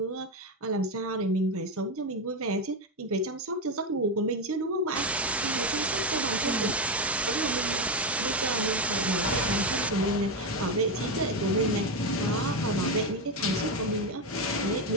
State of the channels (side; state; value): both; normal; correlation 0.10